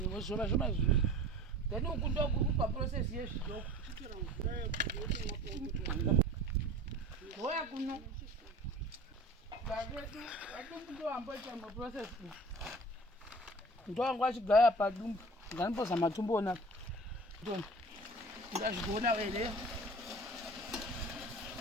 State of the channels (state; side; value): normal; both; correlation 0.41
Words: zvoma izvi then uku ndokuri paprocess yezvidoko goya kuno vadumbu ndoamboita maprocess ndowangu achigaya padumbu nganimbozama tumboona ndazvigoona here